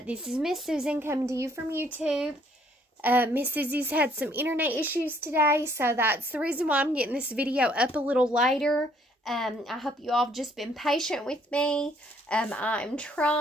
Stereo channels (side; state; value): both; normal; correlation 0.64